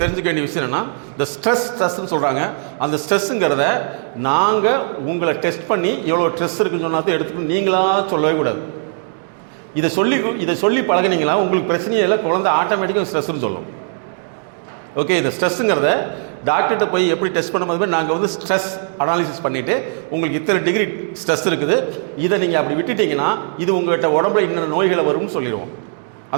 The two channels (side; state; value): left; silent; digital silence